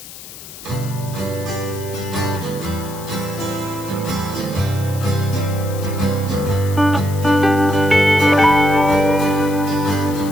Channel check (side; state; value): left; noise; hiss, 15 dB below the sound